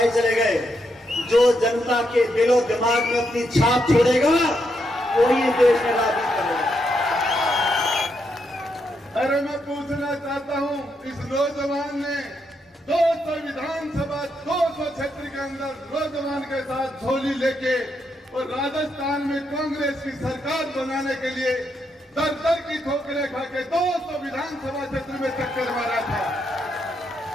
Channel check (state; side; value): normal; both; correlation 0.80